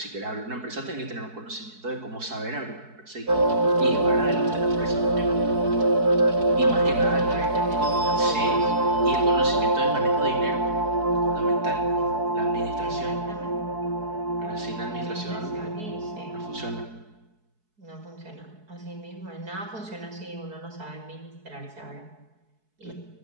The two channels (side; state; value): left; late; 4.7 ms